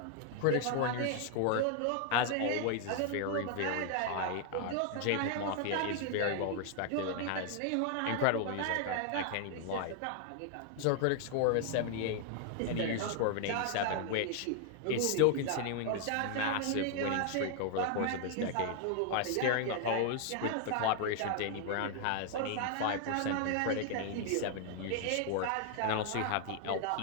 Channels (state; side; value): different; both; correlation 0.00